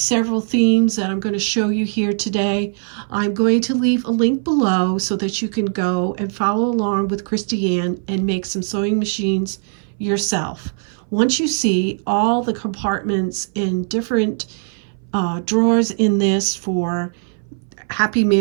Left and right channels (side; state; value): left; silent; 60 dB below the other